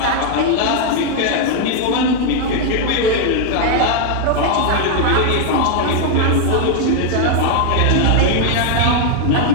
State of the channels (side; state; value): both; different; correlation 0.00